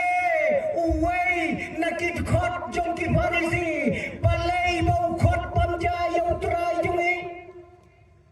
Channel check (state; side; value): identical; both; correlation 1.00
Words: uway nakit khot jong ki Farisi balay bau khot pamja yang utrai jungi